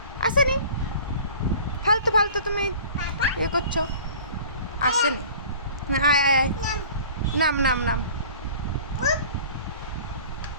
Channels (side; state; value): both; inverted; correlation -0.45